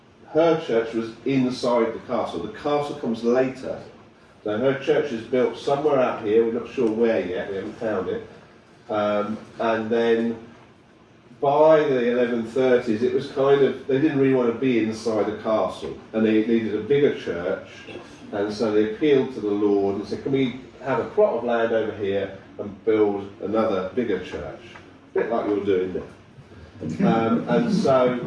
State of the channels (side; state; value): both; identical; correlation 1.00